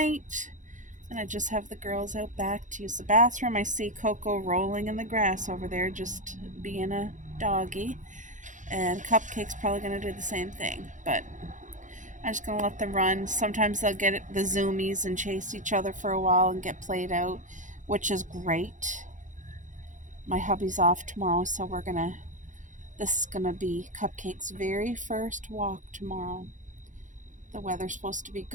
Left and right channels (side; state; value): left; late; 0.36 ms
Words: And I just have the girls out back to use the bathroom. I see Coco rolling in the grass over there, just being a doggy. And Cupcake's probably going to do the same thing. But I'm just going to let them run. Sometimes they'll get the zoomies and chase each other for a while and get played out, which is great. My hubby's off tomorrow, so this is going to be Cupcake's very first walk tomorrow. The weather's supposed to be